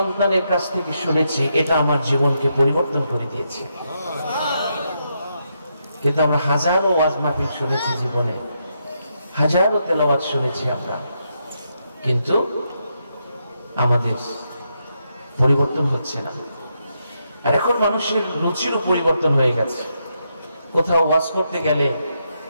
কাছ থেকে শুনেছি, এটা আমার জীবনকে পরিবর্তন করে দিয়েছে। কিন্তু আমরা হাজারো ওয়াজ মাহফিল শুনেছি জীবনে, হাজারো তেলাওয়াত শুনেছি আমরা, কিন্তু আমাদের পরিবর্তন হচ্ছে না। আর এখন মানুষের রুচিরও পরিবর্তন হয়ে গেছে। কোথাও ওয়াজ করতে গেলে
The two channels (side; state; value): both; inverted; correlation -0.81